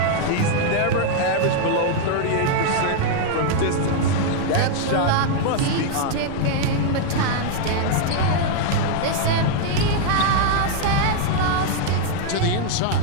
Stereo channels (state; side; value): different; both; correlation 0.00